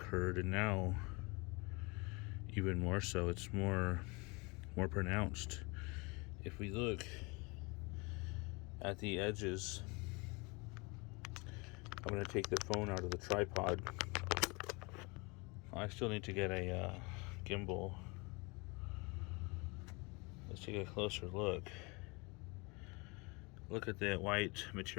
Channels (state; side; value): quieter; right; 27.8 dB